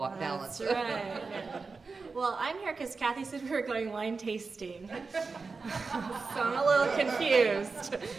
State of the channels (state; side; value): quieter; left; 4.4 dB